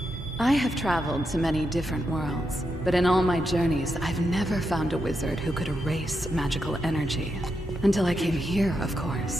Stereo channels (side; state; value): both; normal; correlation 0.84